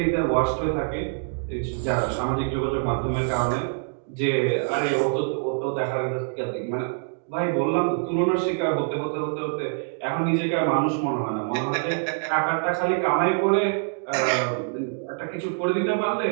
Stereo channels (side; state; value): left; silent; digital silence